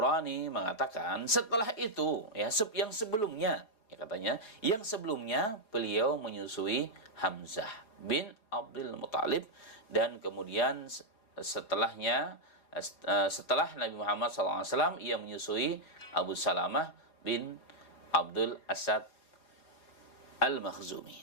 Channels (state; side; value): late; right; 4.8 ms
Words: mengatakan setelah itu, ya, yang sebelumnya, ya, katanya yang sebelumnya beliau menyusui Hamzah bin Abdul Muttalib, dan kemudian setelahnya, setelah Nabi Muhammad SAW, ia menyusui Abu Salamah bin Abdul Asad